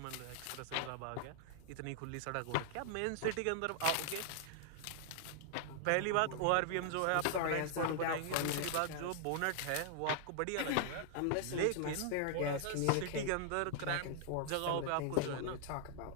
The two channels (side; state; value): both; different; correlation 0.00